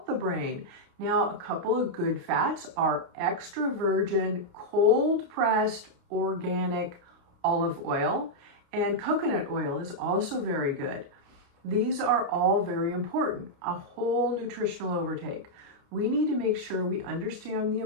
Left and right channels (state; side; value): late; left; 29 ms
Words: the brain. Now, a couple of good fats are extra virgin, cold pressed, organic olive oil, and coconut oil is also very good. These are all very important. A whole nutritional overtake. We need to make sure we understand the